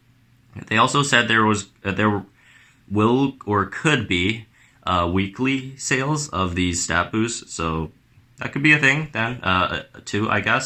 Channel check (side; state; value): both; identical; correlation 1.00